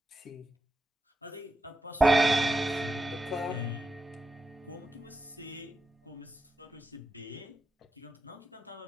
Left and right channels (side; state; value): both; normal; correlation 0.87